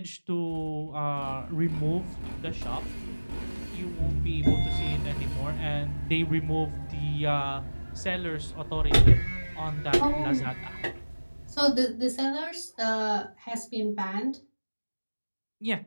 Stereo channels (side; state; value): both; inverted; correlation -1.00